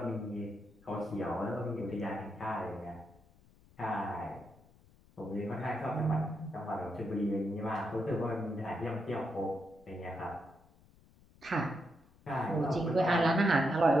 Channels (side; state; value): left; noise; rumble, 27 dB below the sound